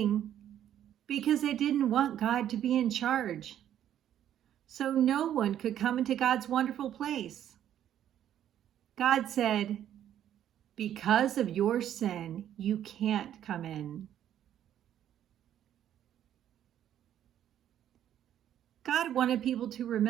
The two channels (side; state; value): left; quieter; 10.8 dB